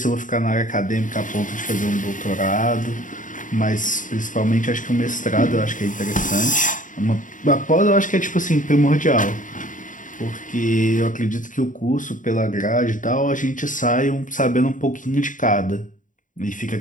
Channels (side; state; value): right; late; 0.38 ms